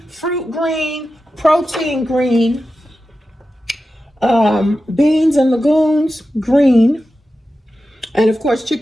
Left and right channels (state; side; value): normal; both; correlation 0.92